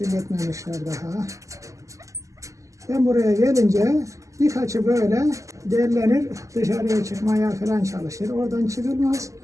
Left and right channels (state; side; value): late; left; 0.16 ms